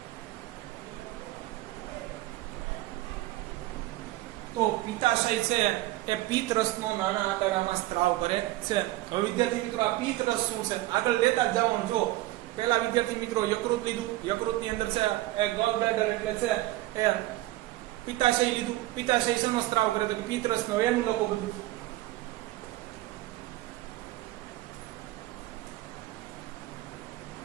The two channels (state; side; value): quieter; left; 17.2 dB